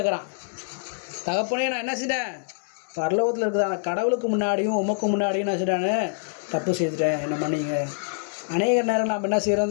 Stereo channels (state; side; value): silent; right; 56 dB below the other